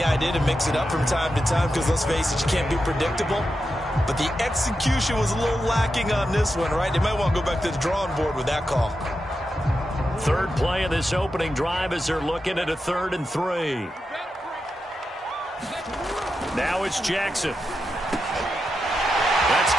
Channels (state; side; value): normal; both; correlation 0.88